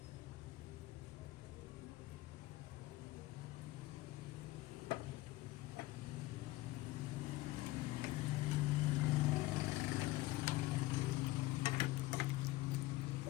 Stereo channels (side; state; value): right; quieter; 18.6 dB